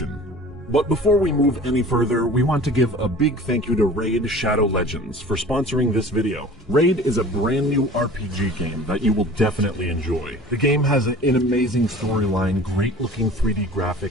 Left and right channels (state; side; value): normal; both; correlation 0.43